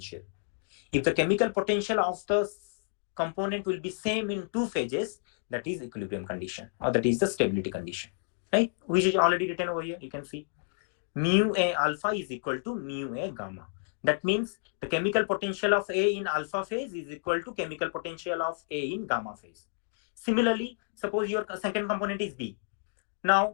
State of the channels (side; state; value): right; silent; digital silence